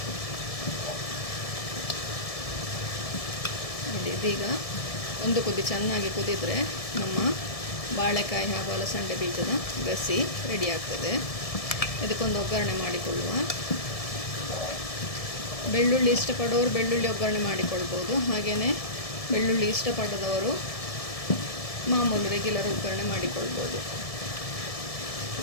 ನೋಡಿ, ಇದೀಗ 1 ಕುದಿ ಚೆನ್ನಾಗಿ ಕುದಿದರೆ ನಮ್ಮ ಬಾಳೆಕಾಯಿ ಹಾಗೂ ಅಲಸಂಡೆ ಬೀಜದ ಗಸಿ ರೆಡಿ ಆಗ್ತದೆ. ಇದಕ್ಕೊಂದು ಒಗ್ಗರಣೆ ಮಾಡಿಕೊಳ್ಳುವ. ಬೆಳ್ಳುಳ್ಳಿ ಇಷ್ಟಪಡೋರು ಬೆಳ್ಳುಳ್ಳಿ ಒಗ್ಗರಣೆ ಮಾಡಿಕೊಳ್ಬೋದು. ಹಾಗೆಯೇ ಬೆಳ್ಳುಳ್ಳಿ ಇಷ್ಟಪಡದವರು ಮಾಮೂಲು ರೆಗ್ಯುಲರ್ ಒಗ್ಗರಣೆ ಮಾಡಿಕೊಳ್ಬೋದು.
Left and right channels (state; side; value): late; right; 1.7 ms